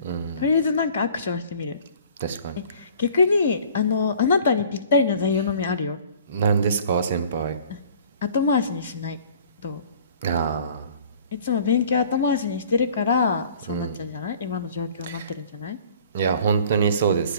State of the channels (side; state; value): both; inverted; correlation -0.50